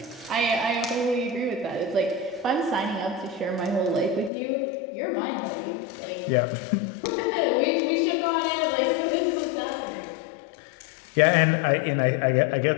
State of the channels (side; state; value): right; drops out; at 4.3 s